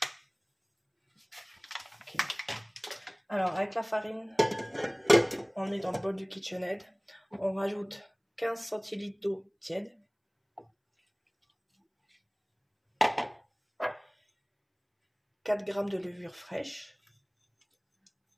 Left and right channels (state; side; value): identical; both; correlation 1.00